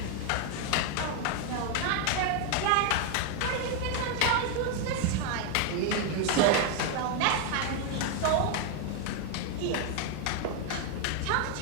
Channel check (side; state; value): both; different; correlation 0.00